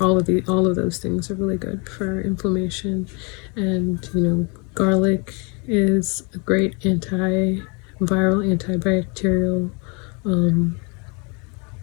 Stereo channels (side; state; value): right; quieter; 32.9 dB